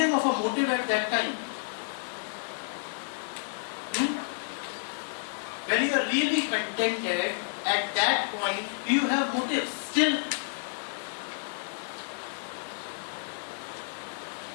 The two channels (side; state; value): right; silent; digital silence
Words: of a motive at that time? When you are really contented, at that point, do you have motives still?